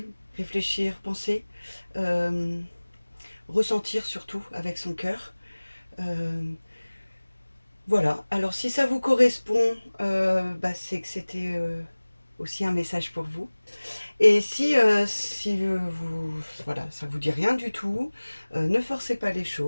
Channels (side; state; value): both; inverted; correlation -1.00